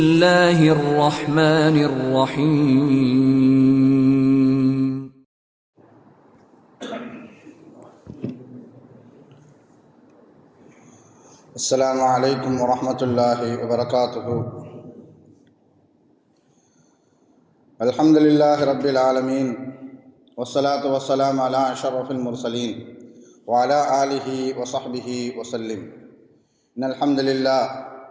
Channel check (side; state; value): both; identical; correlation 1.00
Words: الرحمن الرحيم. السلام عليكم ورحمة الله وبركاته. الحمد لله رب العالمين، والصلاة والسلام على أشرف المرسلين وعلى آله وصحبه وسلم. إن الحمد لله